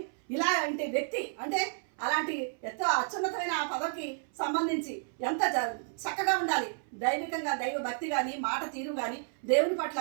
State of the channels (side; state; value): left; silent; 57 dB below the other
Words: ఇలాంటి వ్యక్తి అంటే అలాంటి ఎంతో అత్యున్నతమైన ఆ పదవికి సంబంధించి ఎంత చక్కగా ఉండాలి, దైవికంగా దైవ భక్తి కానీ మాట తీరు కానీ దేవుని పట్ల